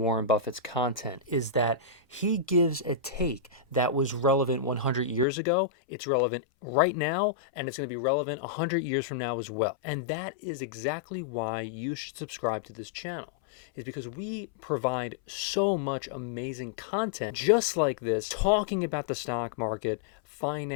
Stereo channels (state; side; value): drops out; right; at 5.2 s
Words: Buffett's content is that he gives a take that was relevant 100 years ago, it's relevant right now, and it's going to be relevant 100 years from now as well. And that is exactly why you should subscribe to this channel, is because we provide so much amazing content just like this, talking about the stock market,